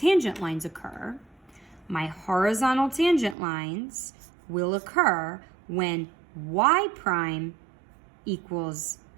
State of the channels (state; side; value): drops out; left; at 3.4 s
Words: lines occur, my horizontal tangent lines will occur when y prime equals